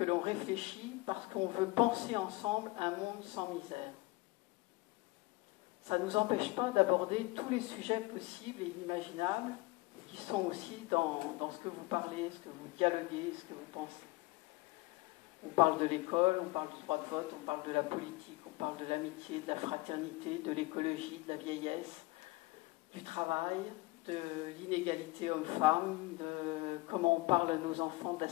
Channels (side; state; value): right; quieter; 21.6 dB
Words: l'on réfléchit parce qu'on veut penser ensemble un monde sans misère. Ça ne nous empêche pas d'aborder tous les sujets possibles et inimaginables qui sont aussi dans ce que vous parlez, ce que vous dialoguez, ce que vous pensez. On parle de l'école, on parle du droit de vote, on parle de la politique, on parle de l'amitié, de la fraternité, de l'écologie, de la vieillesse, du travail, de l'inégalité homme-femme, de comment on parle à nos enfants de la